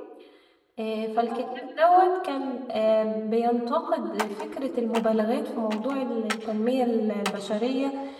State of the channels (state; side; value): identical; both; correlation 1.00